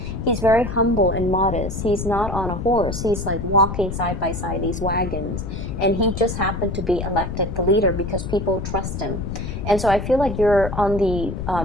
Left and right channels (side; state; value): left; noise; rumble, 5 dB below the sound